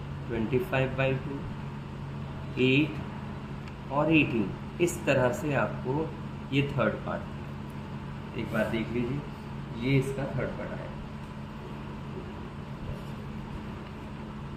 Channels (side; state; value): both; identical; correlation 1.00